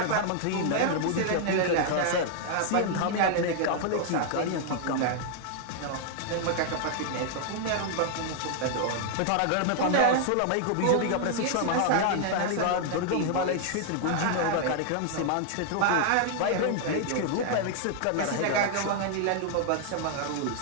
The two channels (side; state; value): both; different; correlation 0.00